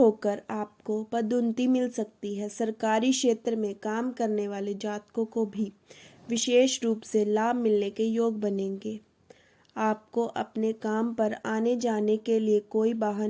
आपको पदोन्नति मिल सकती है। सरकारी क्षेत्र में काम करने वाले जातकों को भी विशेष रूप से लाभ मिलने के योग बनेंगे। आपको अपने काम पर आने जाने के लिए कोई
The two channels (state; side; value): identical; both; correlation 1.00